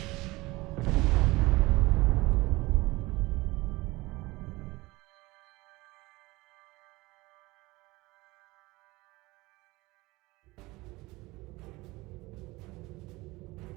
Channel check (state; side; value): quieter; left; 21.2 dB